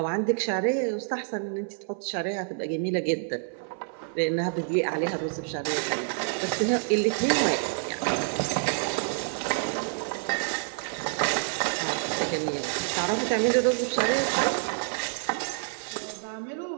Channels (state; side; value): silent; left; 59 dB below the other